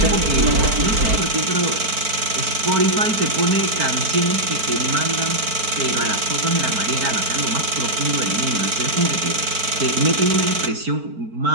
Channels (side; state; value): left; late; 4.5 ms